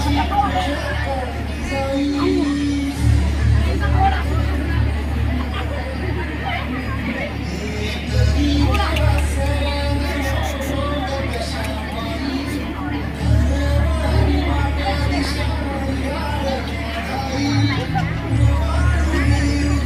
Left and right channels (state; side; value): identical; both; correlation 1.00